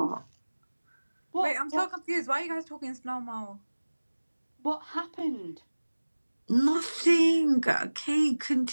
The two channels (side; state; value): both; inverted; correlation -1.00